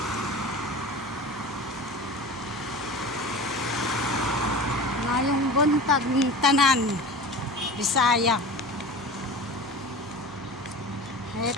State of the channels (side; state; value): right; noise; hum, 22 dB below the sound